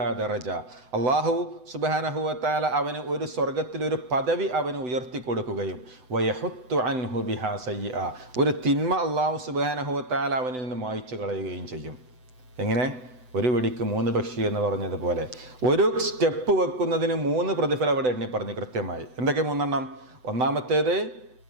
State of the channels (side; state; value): left; late; 7.9 ms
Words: ദറജ, അല്ലാഹു സുബ്ഹാനഹു വ തആല അവന് ഒരു സ്വർഗ്ഗത്തിൽ ഒരു പദവി അവന് ഉയർത്തി കൊടുക്കുകയും വയഹുത്തു അൻഹു ബിഹാ സയ്യിഅ, ഒരു തിന്മ അല്ലാഹു സുബ്ഹാനഹു വ തആല അവനിൽ നിന്ന് മായ്ച്ചു കളയുകയും ചെയ്യും. എങ്ങനെ? ഒരു വെടിക്ക് 3 പക്ഷി എന്ന് പറഞ്ഞതുപോലെ ഒരു സ്റ്റെപ്പ് വെക്കുന്നതിന് 3 പ്രതിഫലം അവിടെ എണ്ണി പറഞ്ഞു കൃത്യമായി. എന്തൊക്കെ 3 എണ്ണം? ഒന്നാമത്തേത്